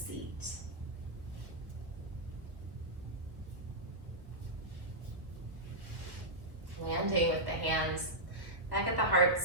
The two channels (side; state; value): left; late; 1.2 ms